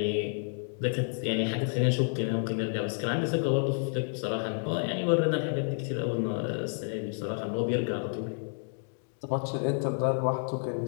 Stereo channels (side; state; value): right; silent; 58 dB below the other